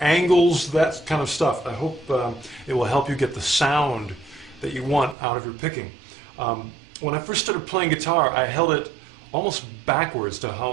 that kind of stuff. I hope it will help you get the sound that you want out of your picking. When I first started playing guitar, I held it almost backwards to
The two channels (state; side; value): drops out; left; at 5.2 s